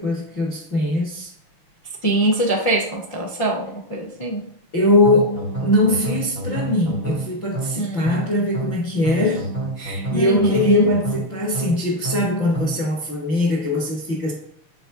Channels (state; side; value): late; right; 6.0 ms